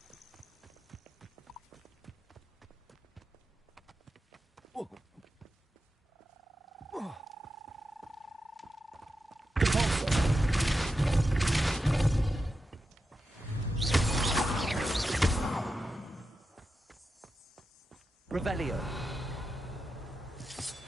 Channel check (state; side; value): normal; both; correlation 0.89